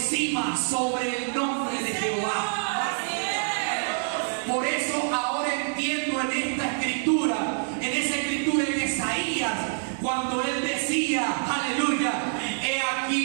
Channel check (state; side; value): silent; left; 61 dB below the other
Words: sobre el nombre de Jehová. Por eso ahora entiendo en esta escritura, en esa escritura en Isaías, cuando él decía, aleluya: he